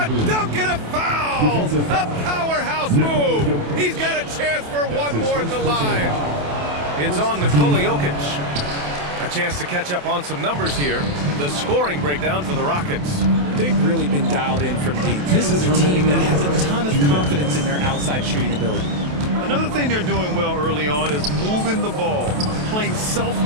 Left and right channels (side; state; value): left; late; 28 ms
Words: a dunk and a foul! A powerhouse move! He's got a chance for one more at the line. It's on Nikola Jokic. A chance to catch up on some numbers here. The scoring breakdown for the Rockets. They've really been dialed in from deep. This is a team that has a ton of confidence in their outside shooting ability. Another thing they're doing well early on is moving the ball, playing